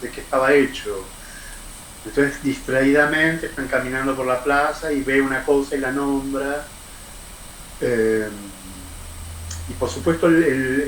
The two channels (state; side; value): identical; both; correlation 1.00